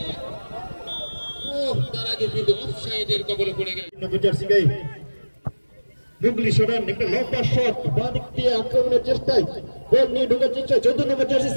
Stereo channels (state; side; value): inverted; both; correlation -1.00